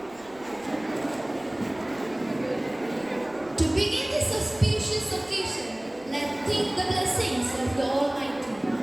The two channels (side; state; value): right; noise; rumble, 26 dB below the sound